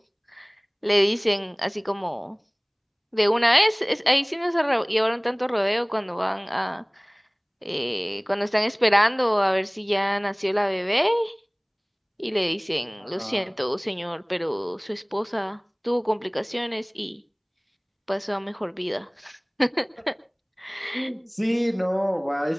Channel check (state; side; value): identical; both; correlation 1.00